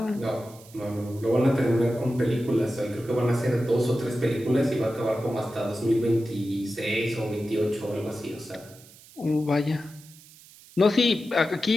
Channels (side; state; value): right; noise; hiss, 23 dB below the sound